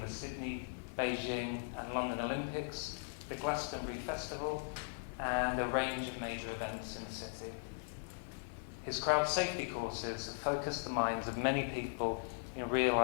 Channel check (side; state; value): right; silent; digital silence